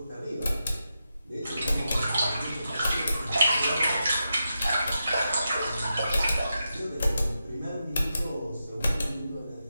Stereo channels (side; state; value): both; inverted; correlation -0.87